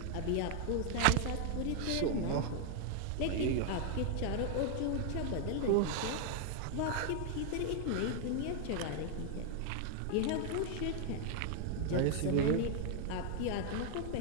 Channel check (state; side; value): different; both; correlation 0.00